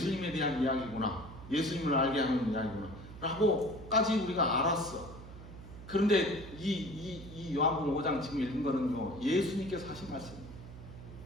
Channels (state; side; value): noise; right; hum, 14 dB below the sound